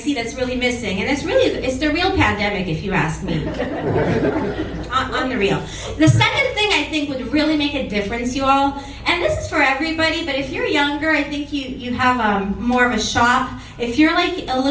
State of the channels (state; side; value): identical; both; correlation 1.00